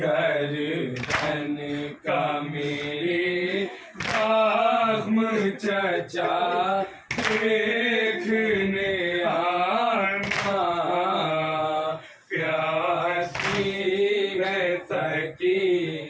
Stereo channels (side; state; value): both; identical; correlation 1.00